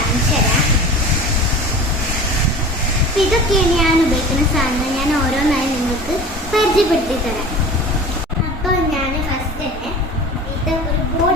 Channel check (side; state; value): both; normal; correlation 0.37